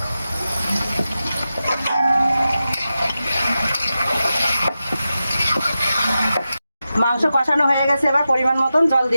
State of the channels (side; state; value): both; inverted; correlation -0.92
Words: মাংস কষানো হয়ে গেছে, এবার পরিমাণ মতন জল